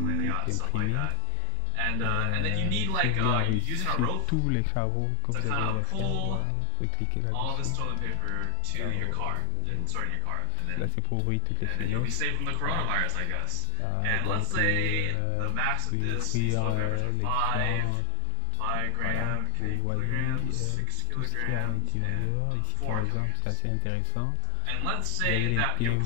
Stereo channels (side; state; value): both; different; correlation 0.00